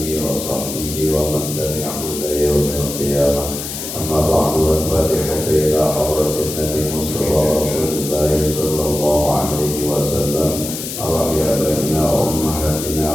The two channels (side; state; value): left; noise; hiss, 7 dB below the sound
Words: wa sahbihi wa man tabi'ahu ila yaumil qiyamah. Amma ba'du, al-fatihatu ila hadratin Nabi Mustafa Rasulullah sallallahu alaihi wasallam wa ya baina wa ummahatina